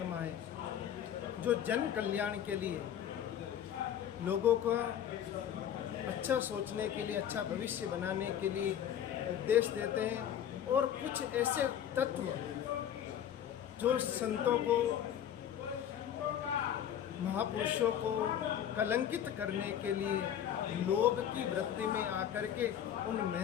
हैं जो जन कल्याण के लिए, लोगों को अच्छा सोचने के लिए, अच्छा भविष्य बनाने के लिए उपदेश देते हैं। और कुछ ऐसे तत्व जो संतों को, महापुरुषों को कलंकित करने के लिए लोभ की वृत्ति में आकर के उन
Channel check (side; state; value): right; quieter; 9.8 dB